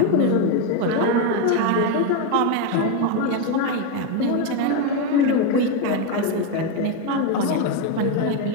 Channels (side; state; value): both; different; correlation 0.03